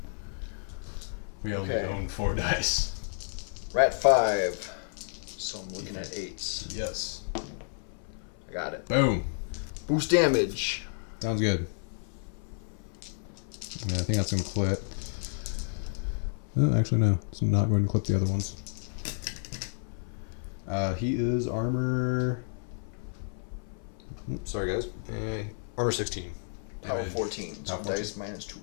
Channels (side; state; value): right; silent; 57 dB below the other